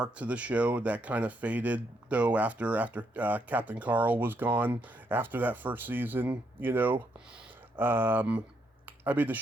to the show that kind of faded though after Captain Carl was gone after that first season. I mean, the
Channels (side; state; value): both; normal; correlation 0.76